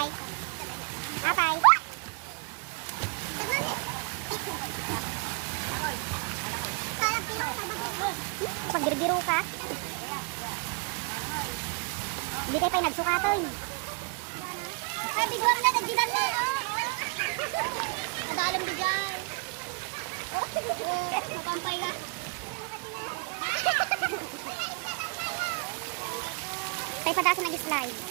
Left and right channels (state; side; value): quieter; left; 32.7 dB